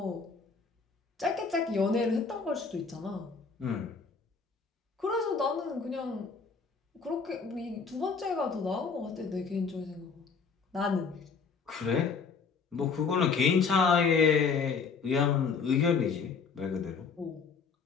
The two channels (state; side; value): quieter; right; 5.3 dB